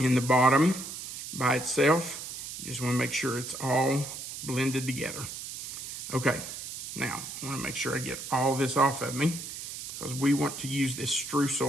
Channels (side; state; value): right; noise; hiss, 9 dB below the sound